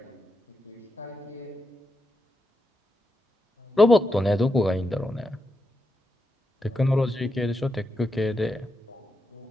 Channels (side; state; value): both; normal; correlation 0.86